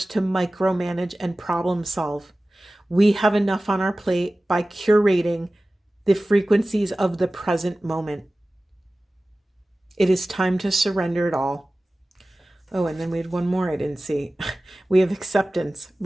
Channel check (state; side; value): normal; both; correlation 0.97